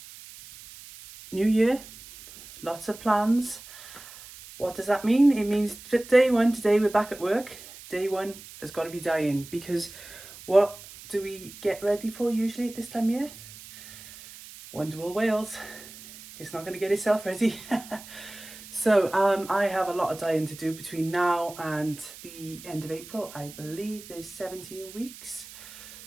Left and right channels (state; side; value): noise; right; hiss, 17 dB below the sound